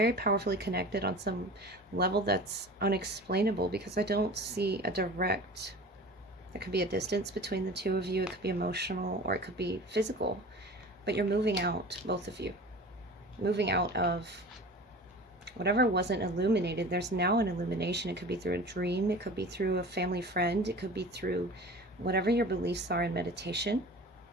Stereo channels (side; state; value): both; normal; correlation 0.38